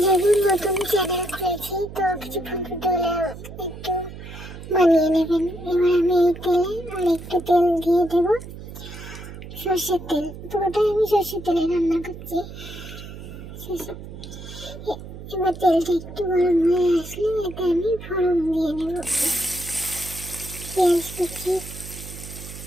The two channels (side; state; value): right; noise; hum, 13 dB below the sound